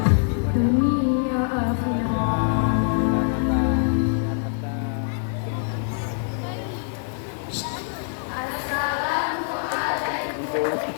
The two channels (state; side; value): silent; right; 58 dB below the other